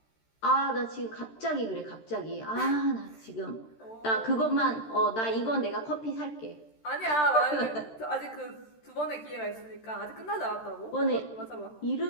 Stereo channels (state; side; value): late; right; 13 ms